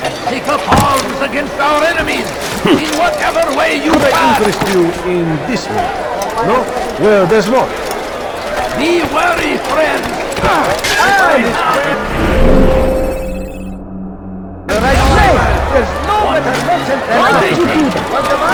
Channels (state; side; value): identical; both; correlation 1.00